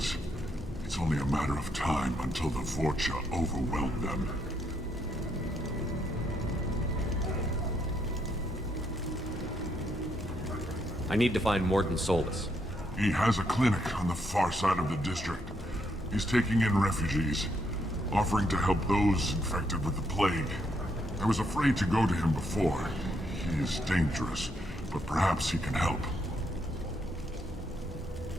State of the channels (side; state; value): both; normal; correlation 0.76